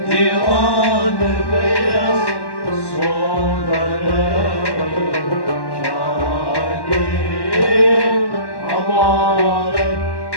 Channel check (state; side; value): late; right; 1.1 ms